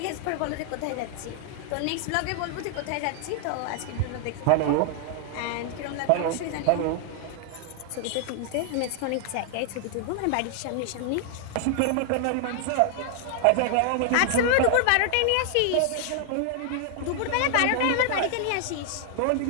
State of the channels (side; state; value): both; different; correlation 0.00